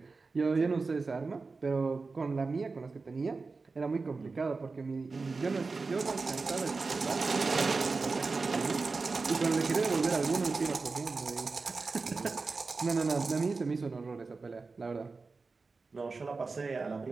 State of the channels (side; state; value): left; quieter; 4.1 dB